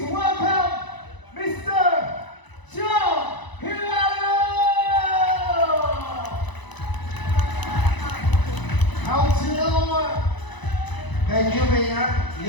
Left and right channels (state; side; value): late; right; 1.0 ms